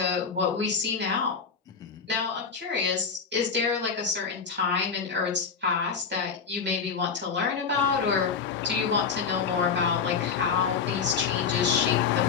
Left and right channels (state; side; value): quieter; right; 5.9 dB